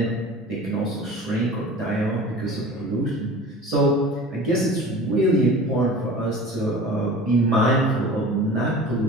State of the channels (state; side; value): normal; both; correlation 0.39